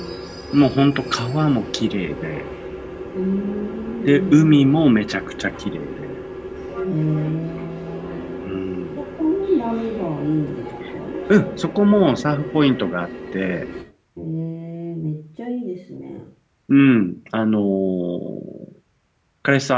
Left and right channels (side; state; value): both; identical; correlation 1.00